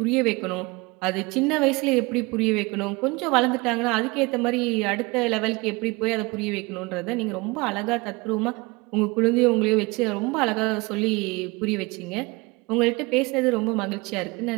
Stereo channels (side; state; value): left; quieter; 25.0 dB